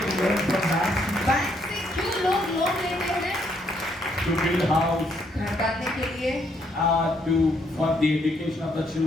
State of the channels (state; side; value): normal; both; correlation 0.72